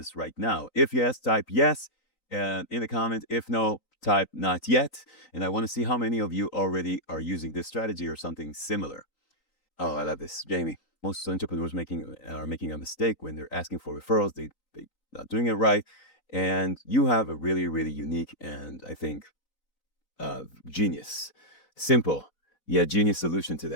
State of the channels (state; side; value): late; right; 3.9 ms